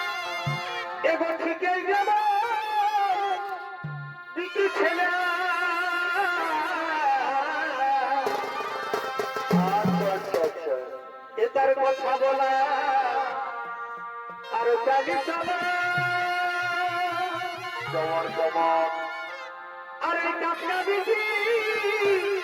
এগো ঠিকই যাব দিকি ছেলে আচ্ছা আচ্ছা আচ্ছা, এ তার কথা বলা আর চালি চলা জমর জমর। আর এই কাপড়া দিদি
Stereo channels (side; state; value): both; identical; correlation 1.00